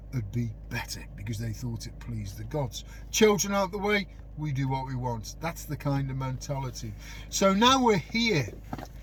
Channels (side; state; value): both; identical; correlation 1.00